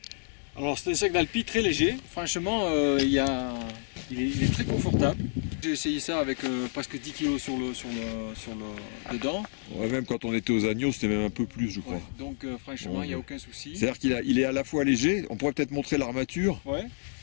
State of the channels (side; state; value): right; silent; digital silence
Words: Alors c'est un sac d'Alpi très léger, franchement il est très confortable. J'ai essayé ça avec presque 10 kg dedans. Ouais, même quand on était aux Agneaux c'était même un peu plus je crois. Ouais, donc franchement il n'y a aucun souci. C'est-à-dire qu'il est à la fois léger, on pourrait peut-être montrer l'armature. Ouais.